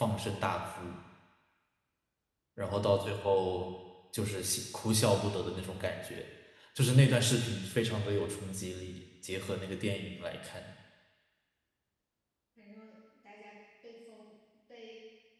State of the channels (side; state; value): both; identical; correlation 1.00